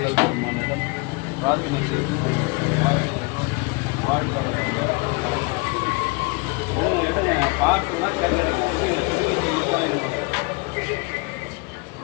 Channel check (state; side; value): quieter; right; 28.2 dB